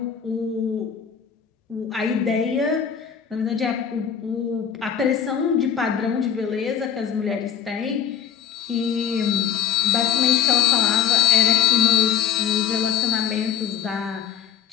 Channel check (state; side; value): quieter; right; 8.5 dB